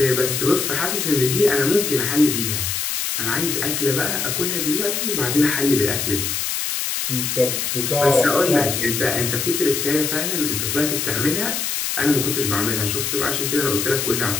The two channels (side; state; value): left; noise; hiss, 1 dB below the sound